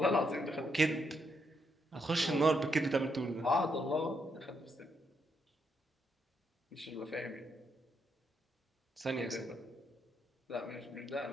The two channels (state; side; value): normal; both; correlation 0.78